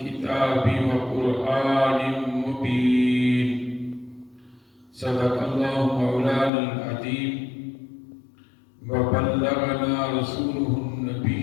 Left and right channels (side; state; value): right; drops out; at 6.5 s